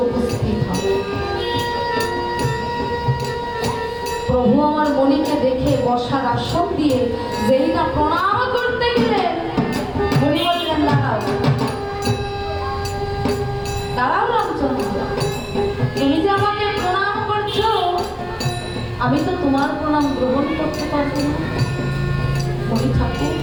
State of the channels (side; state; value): both; identical; correlation 1.00